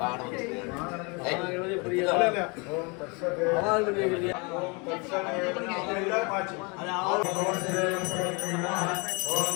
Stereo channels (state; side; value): quieter; right; 30.6 dB